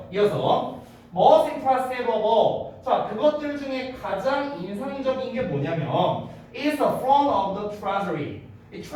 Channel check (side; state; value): both; identical; correlation 1.00